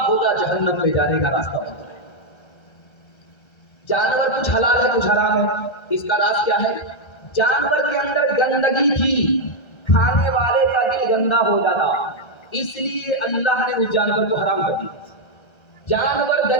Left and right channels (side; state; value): right; late; 1.3 ms